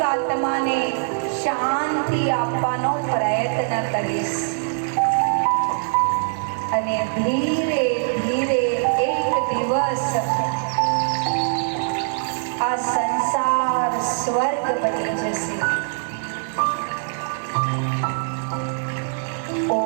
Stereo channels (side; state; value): left; silent; digital silence